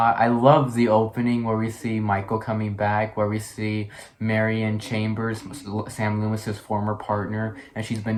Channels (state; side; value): identical; both; correlation 1.00